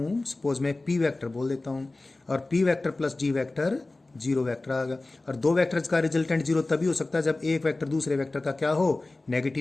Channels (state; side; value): quieter; right; 3.1 dB